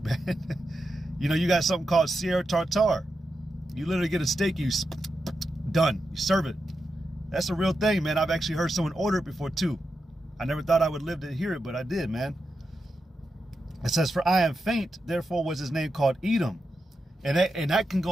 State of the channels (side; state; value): both; normal; correlation 0.88